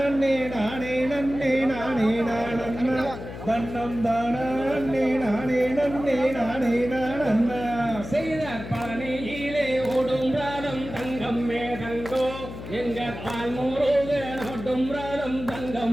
நானே நன்னே நானே நானண்ணா தன்னம் தானே நானே நன்னே நானே நானண்ணா செய்தார் பழனியிலே ஓடும் ராதம் தங்கம் மேதங்கோ எங்க பால் முருகன் ஓடும் ராதம்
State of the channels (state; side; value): noise; left; hum, 11 dB below the sound